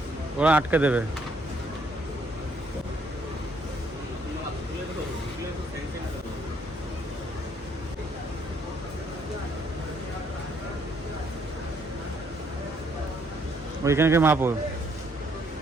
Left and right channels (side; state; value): both; normal; correlation 0.69